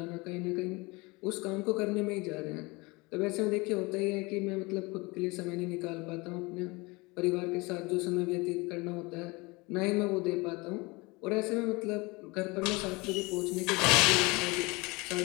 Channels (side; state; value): right; quieter; 25.1 dB